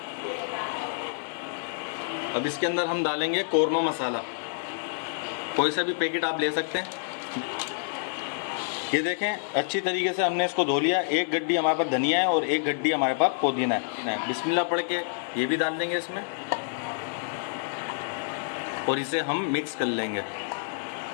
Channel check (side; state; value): right; silent; digital silence